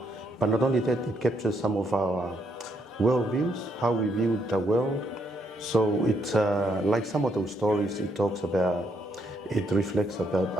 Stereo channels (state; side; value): normal; both; correlation 0.75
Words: But not only that, it captures some of our worldviews, how we view the world. So it's like some of those stories, it reflects about